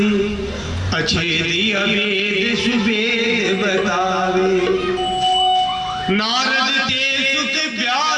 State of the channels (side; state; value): both; identical; correlation 1.00